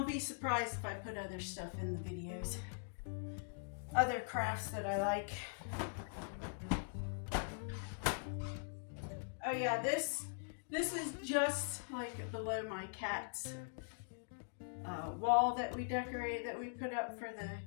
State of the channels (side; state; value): right; silent; digital silence